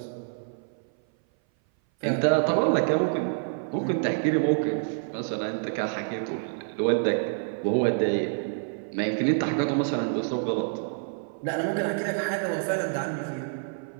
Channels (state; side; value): silent; left; 58 dB below the other